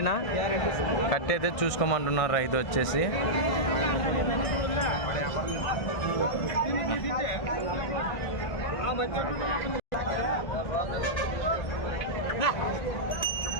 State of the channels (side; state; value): right; late; 1.6 ms